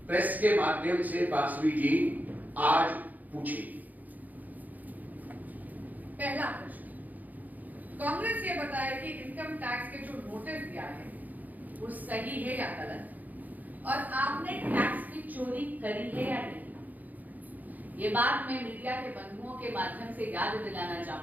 प्रेस के माध्यम से बासवी जी आज पूछे। पहला प्रश्न, कांग्रेस ये बताए कि इनकम टैक्स के जो नोटिस दिया है वो सही है या गलत, और आपने टैक्स की चोरी करी है या नहीं। ये बात मैं मीडिया के बंधुओं के माध्यम से याद दिलाना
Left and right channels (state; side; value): late; left; 0.081 ms